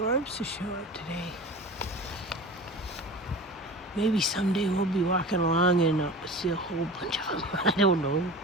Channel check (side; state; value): both; normal; correlation 0.35